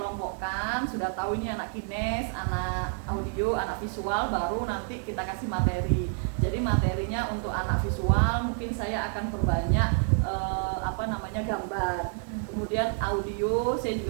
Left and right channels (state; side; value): silent; left; 58 dB below the other